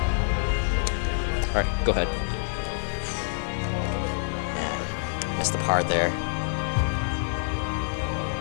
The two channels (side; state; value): right; silent; 58 dB below the other